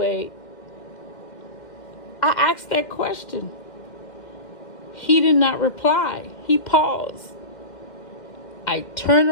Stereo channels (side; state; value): right; late; 2.1 ms